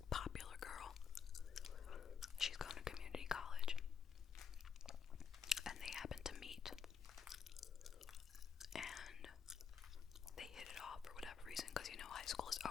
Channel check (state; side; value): quieter; right; 7.0 dB